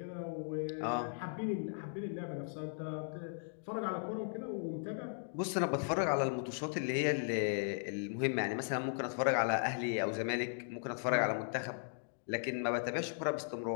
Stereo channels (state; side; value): silent; right; digital silence